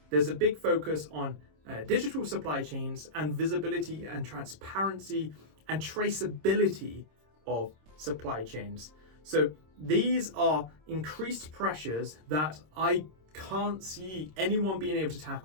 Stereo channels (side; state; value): left; late; 26 ms